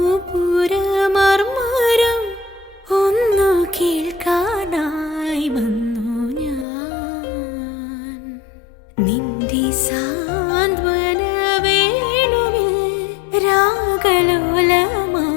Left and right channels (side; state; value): right; drops out; at 6.7 s